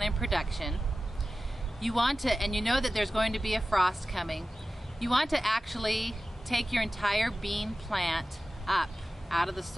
in production, you want to, and you know that there's going to be a frost coming, you want to actually take your entire bean plant up out of the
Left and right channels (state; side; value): normal; both; correlation 0.95